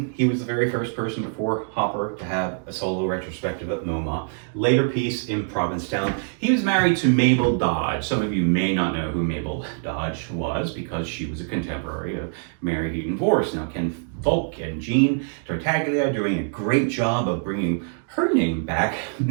he was the very first person before Hopper to have a solo retrospective at MoMA. Later piece in Provincetown. He was married to Mabel Dodge. Some of you may not know who Mabel Dodge was because she was a contemporary of Mary Heaton Vorse. Now Ken Volk and Jean Tartaglia are doing a great job of bringing her name back.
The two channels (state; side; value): silent; left; 62 dB below the other